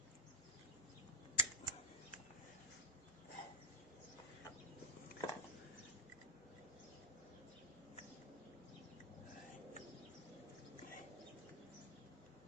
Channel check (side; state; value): right; noise; hum, 26 dB below the sound